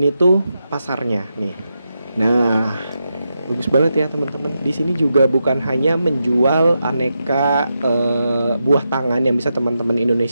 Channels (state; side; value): inverted; both; correlation -0.86